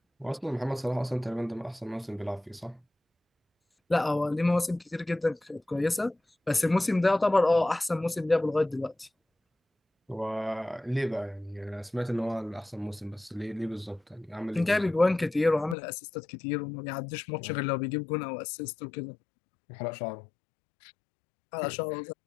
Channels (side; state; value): right; drops out; at 15.8 s